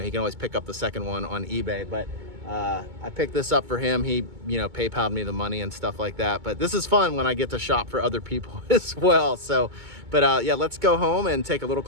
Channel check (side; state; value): left; late; 2.2 ms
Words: he can always pick up the second one on eBay. But I picked this up for him. He, you know, PayPal'd me the money and stuff like that. But this is fun when I get to shop for other people as well. So, but yeah, let's go home and take a little